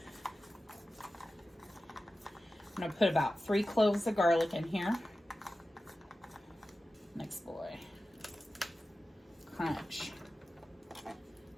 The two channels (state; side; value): normal; both; correlation 0.94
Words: I'm gonna put about 3 cloves of garlic in here. Next boy. Crunch.